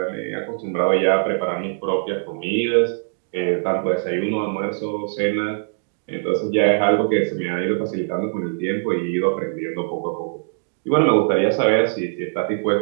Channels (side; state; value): left; silent; digital silence